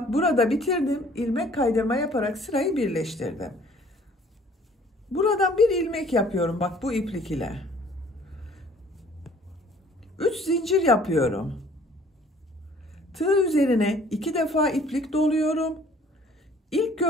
burada bitirdim. İlmek kaydırma yaparak sırayı birleştirdim. Buradan bir ilmek yapıyorum bak bu iplik ile. 3 zincir yapıyorum. Tığ üzerine 2 defa iplik doluyorum. İlk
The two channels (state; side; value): normal; both; correlation 0.55